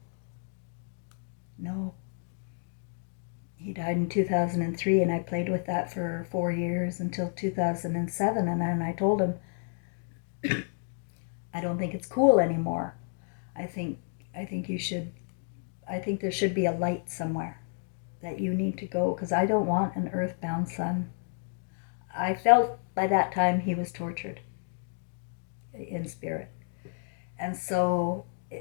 No. He died in 2003, and I played with that for 4 years until 2007, and then I told him, I don't think it's cool anymore. I think you should, I think there should be a light somewhere that you need to go, because I don't want an earthbound son. I felt by that time he was tortured in spirit. And so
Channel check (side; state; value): right; silent; 57 dB below the other